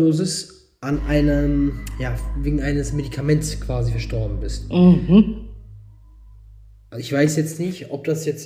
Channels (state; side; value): identical; both; correlation 1.00